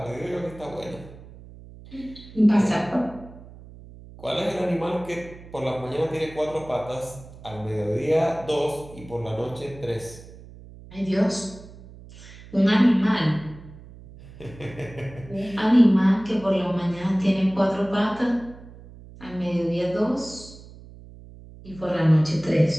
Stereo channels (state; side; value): noise; right; hum, 18 dB below the sound